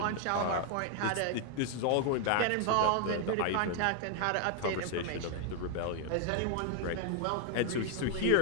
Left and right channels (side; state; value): both; different; correlation 0.00